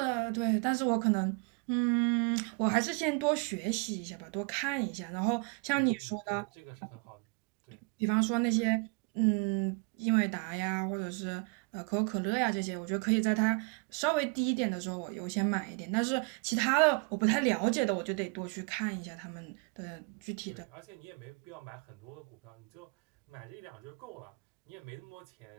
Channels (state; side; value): quieter; left; 35.7 dB